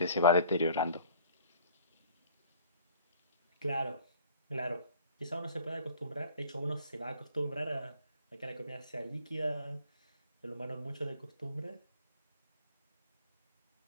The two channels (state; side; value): inverted; both; correlation -0.51